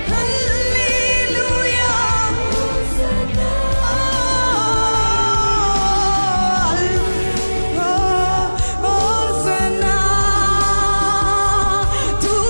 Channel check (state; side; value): inverted; both; correlation -1.00